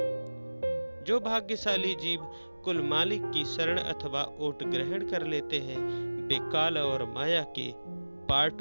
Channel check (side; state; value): both; inverted; correlation -1.00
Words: जो भाग्यशाली जीव कुल मालिक की शरण अथवा ओट ग्रहण कर लेते हैं, वे काल और माया के